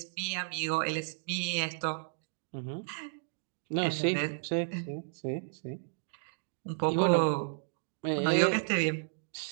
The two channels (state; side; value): silent; left; digital silence